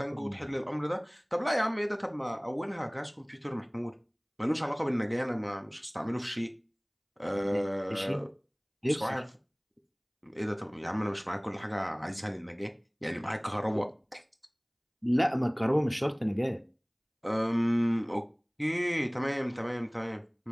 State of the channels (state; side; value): identical; both; correlation 1.00